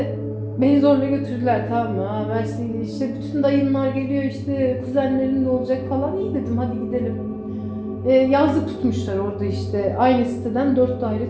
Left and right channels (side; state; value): both; identical; correlation 1.00